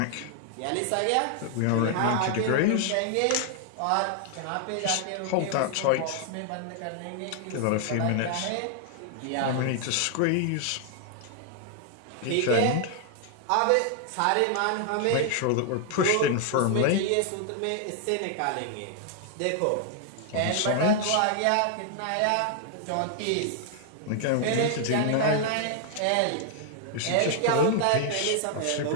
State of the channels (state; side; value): different; both; correlation 0.00